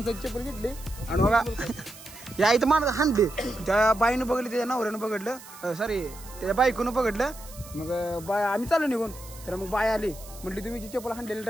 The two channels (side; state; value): right; noise; hiss, 18 dB below the sound